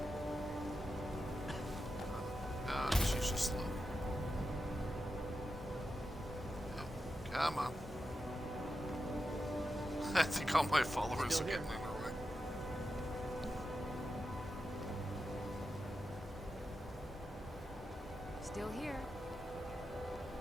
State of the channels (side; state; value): both; normal; correlation 0.89